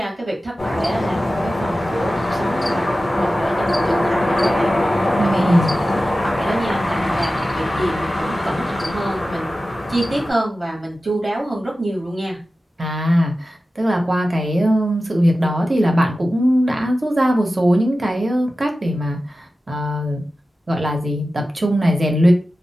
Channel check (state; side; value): normal; both; correlation 0.94